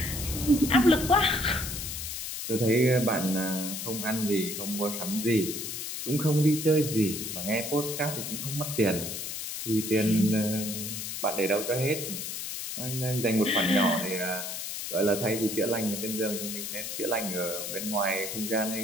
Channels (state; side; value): noise; left; hiss, 5 dB below the sound